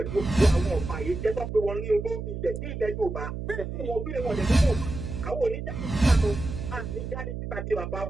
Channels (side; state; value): right; noise; hum, 6 dB below the sound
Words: gbogbo àwọn ọ̀pá yìí jẹ́ tó pé wọ́n ní olórí ilẹ̀ ní ilẹ̀ Yorùbá wọn bí wọn lè mú àwọn oníjáde síta di bàbá